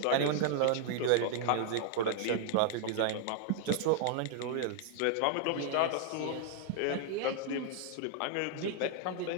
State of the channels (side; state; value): both; different; correlation 0.00